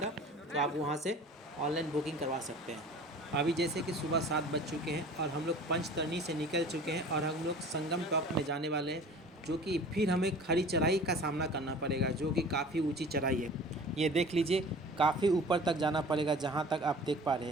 तो आप वहाँ से ऑनलाइन बुकिंग करवा सकते हैं। अभी जैसे कि सुबह 7 बज चुके हैं और हम लोग पंचतरणी से निकल चुके हैं और हम लोग संगम टॉप में जाने वाले हैं, जो कि फिर हमें खड़ी चढ़ाई का सामना करना पड़ेगा, जो कि काफ़ी ऊंची चढ़ाई है। ये देख लीजिए, काफ़ी ऊपर तक जाना पड़ेगा। जहाँ तक आप देख पा रहे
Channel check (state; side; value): normal; both; correlation 0.43